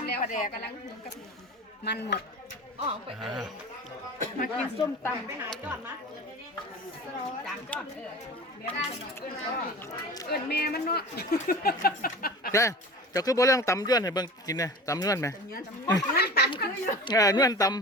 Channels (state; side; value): normal; both; correlation 0.36